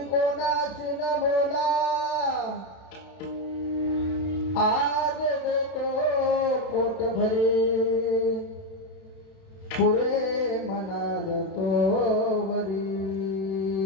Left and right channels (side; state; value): right; late; 32 ms